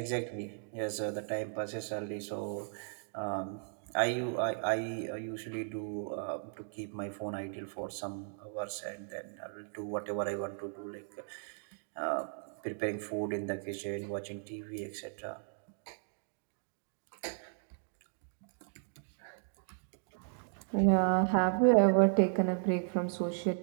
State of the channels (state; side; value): silent; left; digital silence